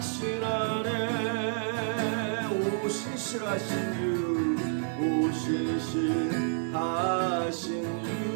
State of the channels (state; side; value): silent; left; digital silence